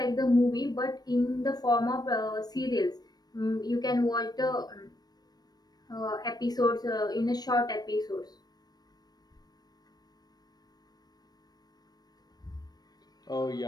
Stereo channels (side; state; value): right; late; 0.19 ms